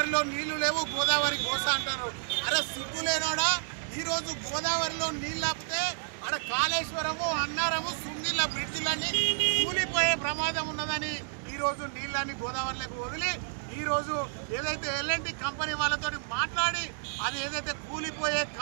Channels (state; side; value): silent; left; digital silence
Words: నీళ్లు లేవు, గోదావరి కోస అంటారు. అరే సిగ్గులేనోడా, ఈ రోజు గోదావరిలో నీళ్ళు ఆపితే అక్కడ కాళేశ్వరము, అన్నారము, సుంగిళ్ళ బ్రిడ్జిలన్నీ కూలిపోయే ప్రమాదం ఉన్నదని ఈ రోజు నీళ్ళని గోదావరిలోకి వదిలి ఈ రోజు ఏదైతే ఎల్ఎన్టీ కంపెనీ వాళ్ళతో మాట్లాడి అది ఏదైతే కూలిపోయే